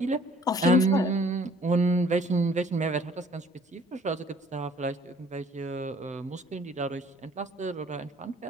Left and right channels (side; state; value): both; normal; correlation 0.56